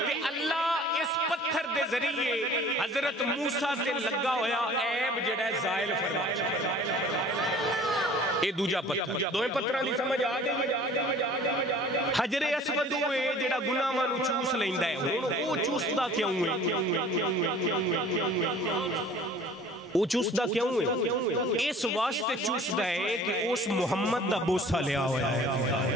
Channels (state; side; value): normal; both; correlation 0.48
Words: تے اللہ اس پتھر دے ذریعے حضرت موسیٰ تے لگا ہویا عیب جڑا ہے زائل فرمایا. اے دوجا پتھر دوئے پتھراں دی سمجھ آ گئی. حجر اسود ہوئے جڑا گناہاں نوں چوس لیندا ہے او چوسدا کیوں ہے؟ وہ چوسدہ کیوں ہے؟ اس واسطے چوسدہ ہے کہ اس محمد دا بوسہ لیا ہوا ہے.